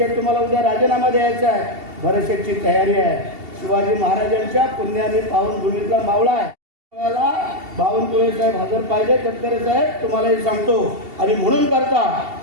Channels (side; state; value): left; late; 2.7 ms